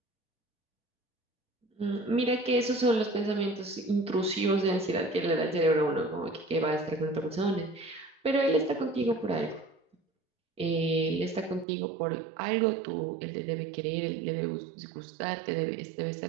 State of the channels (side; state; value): left; drops out; at 11.7 s